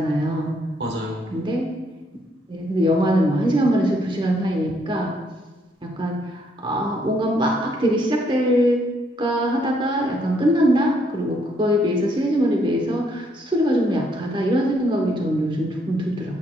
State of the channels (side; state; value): both; normal; correlation 0.71